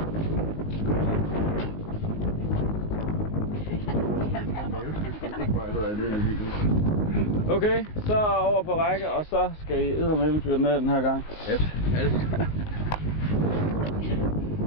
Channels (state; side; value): late; right; 19 ms